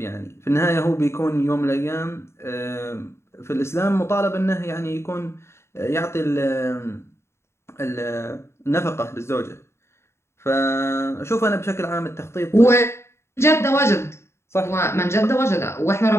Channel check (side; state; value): right; late; 0.13 ms